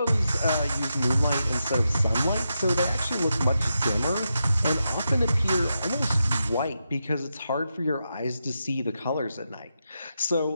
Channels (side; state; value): both; inverted; correlation -0.86